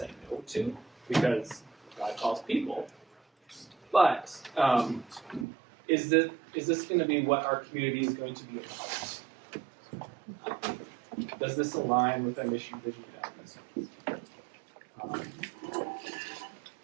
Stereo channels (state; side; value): drops out; left; at 5.5 s